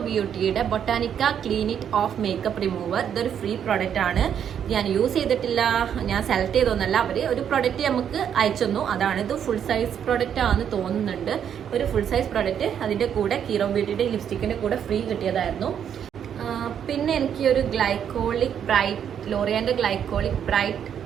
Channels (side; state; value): left; quieter; 8.7 dB